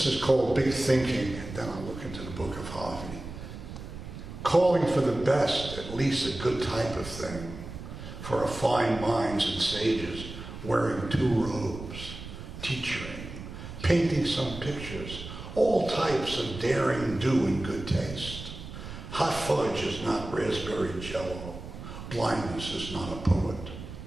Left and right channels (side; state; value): right; noise; rumble, 11 dB below the sound